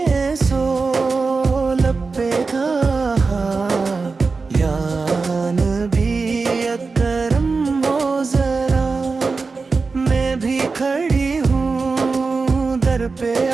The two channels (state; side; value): quieter; left; 4.3 dB